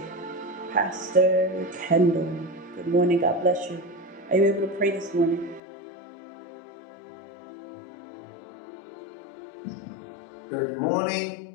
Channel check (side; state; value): right; drops out; at 5.6 s